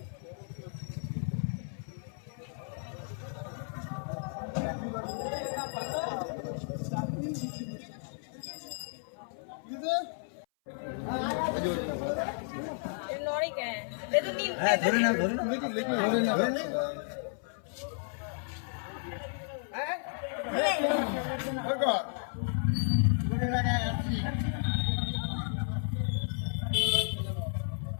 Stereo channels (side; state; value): right; silent; 56 dB below the other